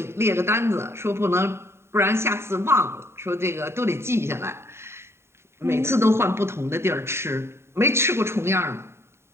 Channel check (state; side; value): late; left; 0.12 ms